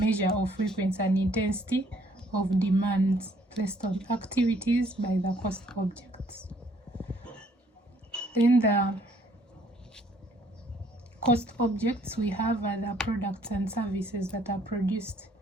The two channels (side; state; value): both; normal; correlation 0.63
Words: of frequency and intensity of demands placed on activities by the cost objects. Then the cost objects we have are the products and services that are produced,